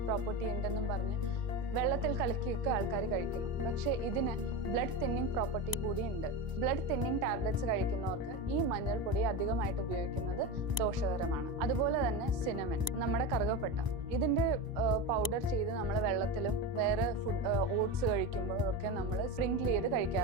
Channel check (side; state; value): left; late; 1.0 ms